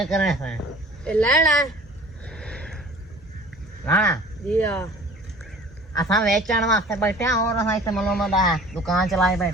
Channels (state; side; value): normal; both; correlation 0.47